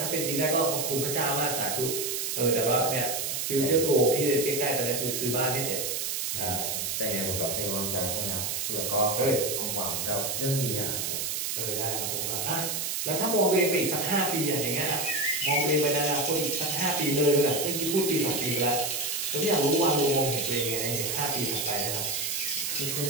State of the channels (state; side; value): noise; right; hiss, 1 dB below the sound